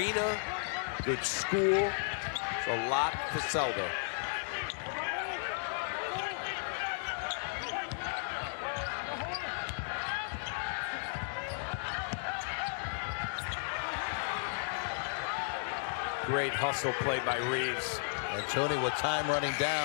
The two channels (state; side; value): silent; right; digital silence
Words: good school. There's a lot to sell there. Great hustle play by Reeves. And Tony with time running